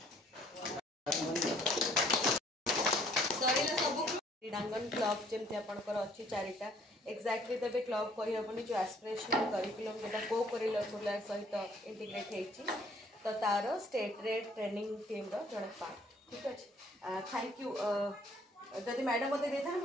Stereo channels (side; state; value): both; normal; correlation 0.61